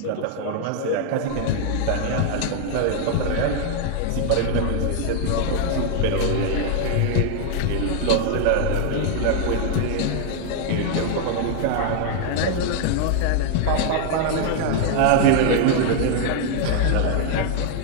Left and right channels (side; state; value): both; different; correlation 0.00